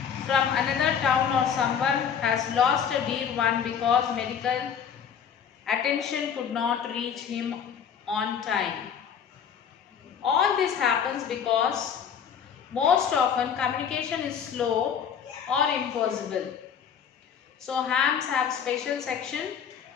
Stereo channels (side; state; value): right; quieter; 7.7 dB